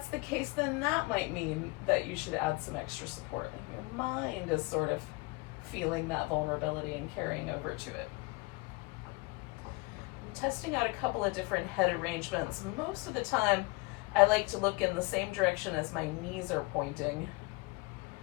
the case, then that might mean that you should add some extra support. And your mind is sort of feeling that vulnerability and carrying over to it. I'm testing out a couple of different head arrangements. Most of the time, I like to look in the same direction as my knees are pointing.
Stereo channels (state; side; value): quieter; right; 24.9 dB